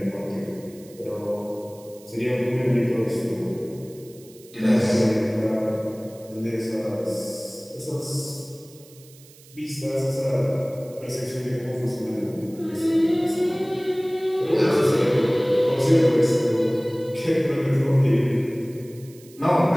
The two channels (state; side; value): noise; right; hiss, 24 dB below the sound